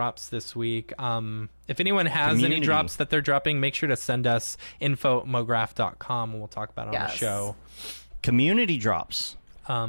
this week. If anyone has any Community. drops that they're dropping, make sure to send us info@mograph.com and we'll talk about it on the Yes. show. Community drops.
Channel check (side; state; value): both; inverted; correlation -1.00